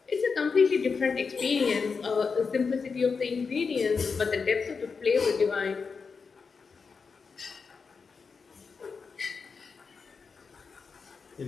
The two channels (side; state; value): right; quieter; 5.2 dB